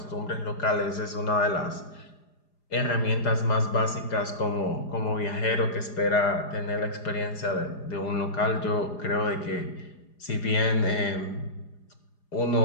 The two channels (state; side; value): late; right; 4.9 ms